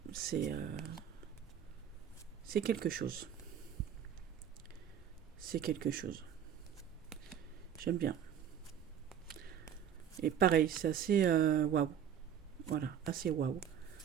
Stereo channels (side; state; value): left; quieter; 9.0 dB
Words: c'est c'est quelque chose. C'est quelque chose. J'aime bien. Et pareil, c'est assez waouh. Voilà, assez waouh.